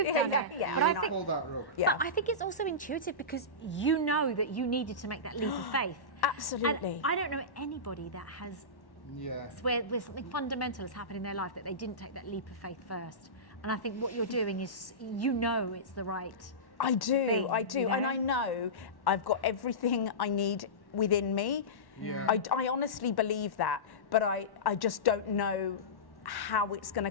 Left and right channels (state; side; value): late; right; 1.1 ms